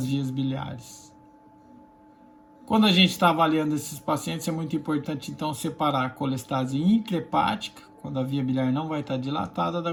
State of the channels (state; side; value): identical; both; correlation 1.00